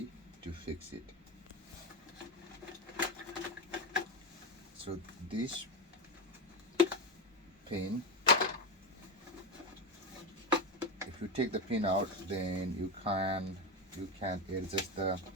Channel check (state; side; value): normal; both; correlation 0.15